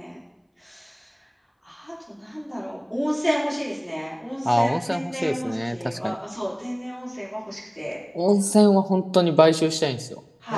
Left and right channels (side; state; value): both; identical; correlation 1.00